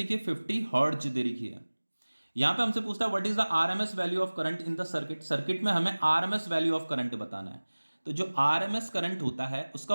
है, 50 हर्ट्ज दे रखी है। यहां पे हमसे पूछता है what is the RMS value of current in the circuit. Circuit में हमें आरएमएस वैल्यू ऑफ करंट बताना है। तो जो आरएमएस करंट होता है उसका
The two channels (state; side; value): inverted; both; correlation -1.00